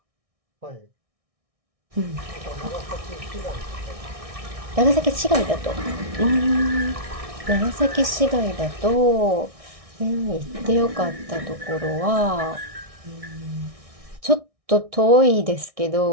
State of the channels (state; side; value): late; left; 1.6 ms